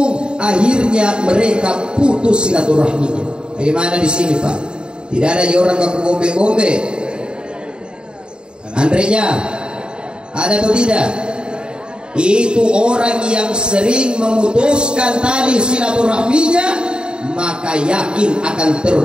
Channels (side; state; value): left; late; 0.050 ms